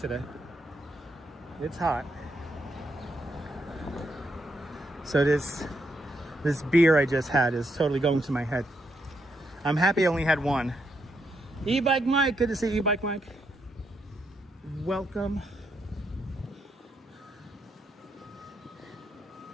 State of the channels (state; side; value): normal; both; correlation 0.79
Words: It's hot. So this beer I just had is totally going to my head. I'm happy I only had one. E-Bike Mike, good to see E-Bike Mike. Welcome.